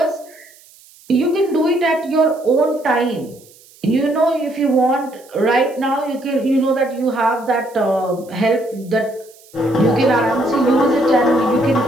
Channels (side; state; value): right; noise; hiss, 26 dB below the sound